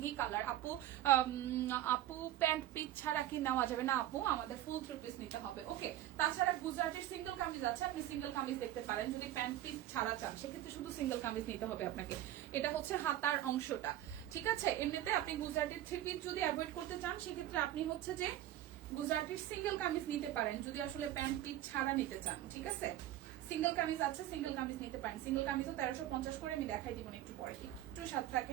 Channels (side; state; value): left; quieter; 13.5 dB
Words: কালার। আপু আপু প্যান্ট পিস ছাড়া কি নেওয়া যাবে না? আপু আমাদের ফুল থ্রি পিস নিতে হবে। ওকে, তাছাড়া গুজরাটের সিঙ্গেল কামিজ আছে, আপনি সিঙ্গেল কামিজ দেখতে পারেন। যদি প্যান্ট পিস ছাড়া চান সেক্ষেত্রে শুধু সিঙ্গেল কামিজ নিতে হবে আপনাকে। এটা হচ্ছে হাতার অংশটা, ঠিক আছে। এমনিতে আপনি গুজরাটের থ্রি পিস যদি অ্যাভয়েড করতে চান সেক্ষেত্রে আপনি হচ্ছে যে গুজরাটির সিঙ্গেল কামিজ নিতে পারেন, যদি আসলে প্যান্ট পিস ছাড়া নিতে চান, ঠিক আছে। সিঙ্গেল কামিজ আছে, সিঙ্গেল কামিজ নিতে পারেন। সিঙ্গেল কামিজও 1350 করে, আমি দেখাই দিব না একটু পরে, একটু সাথে